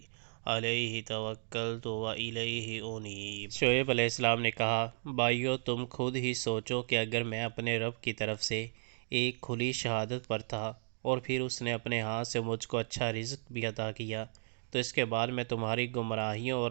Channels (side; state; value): left; silent; digital silence